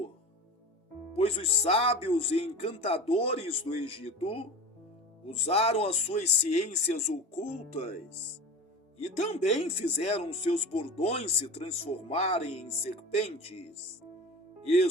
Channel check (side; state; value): both; normal; correlation 0.33